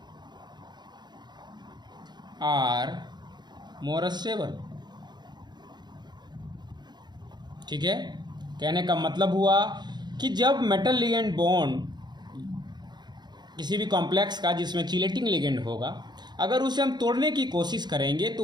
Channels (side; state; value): left; late; 0.21 ms